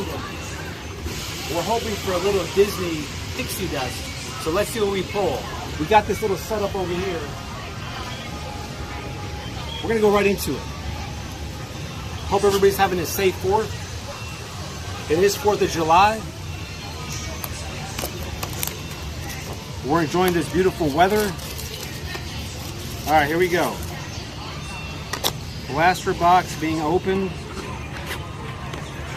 We're hoping for a little Disney pixie dust. So let's see what we pull. We got this little setup over here. We're going to go right into it. Hope everybody's having a safe 4th. It is 4th of July. We're enjoying this beautiful weather. All right, here we go. Blaster box being opened.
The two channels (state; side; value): identical; both; correlation 1.00